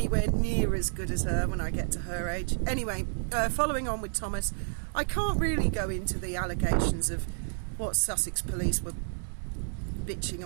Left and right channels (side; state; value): left; silent; digital silence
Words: near as good as her when I get to her age. Anyway, following on with Thomas, I can't really go into the allegations of what Sussex police were